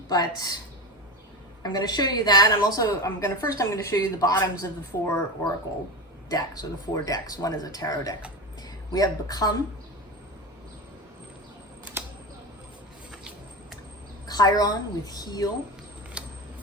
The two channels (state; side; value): normal; both; correlation 0.23